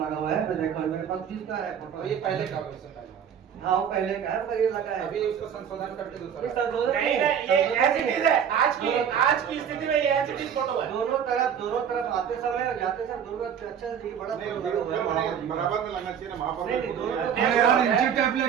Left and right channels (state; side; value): quieter; left; 8.2 dB